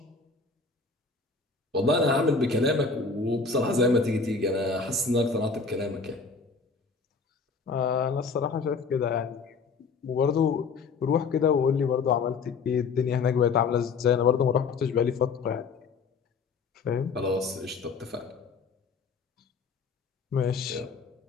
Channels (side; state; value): right; quieter; 4.7 dB